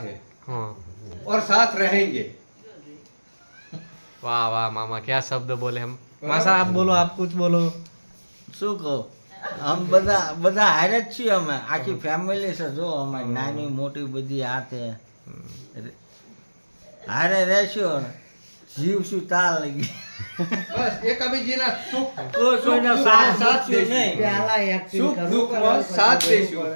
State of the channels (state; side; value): inverted; both; correlation -1.00